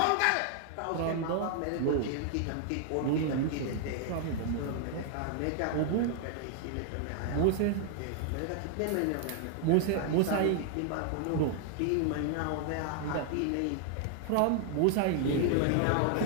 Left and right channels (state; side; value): different; both; correlation 0.00